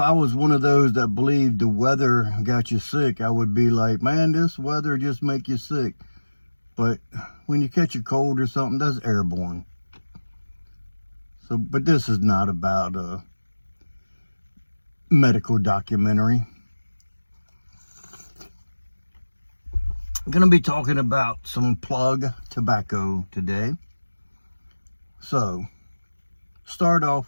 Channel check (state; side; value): inverted; both; correlation -1.00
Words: was one of those that believed the weather got you sick, I would be like, man, this weather just make you sick. But when you catch a cold or something, that's airborne. So, but this is not about a medical documentary. I'm going to be talking about some plug tobacco today. So, start off